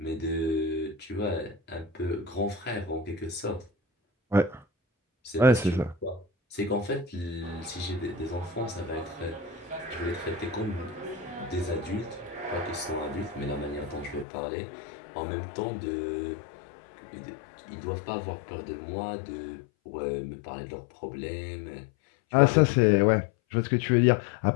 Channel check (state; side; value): drops out; right; at 14.2 s